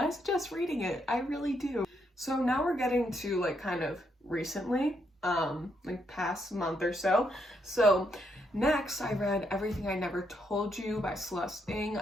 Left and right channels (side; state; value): both; normal; correlation 0.77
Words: suggest reading it. I really do. So now we're getting to like kind of recently, like past month or so. So next, I read Everything I Never Told You by Celeste Ng.